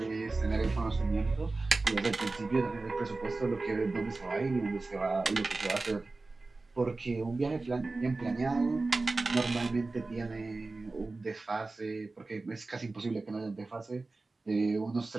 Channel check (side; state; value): left; quieter; 3.5 dB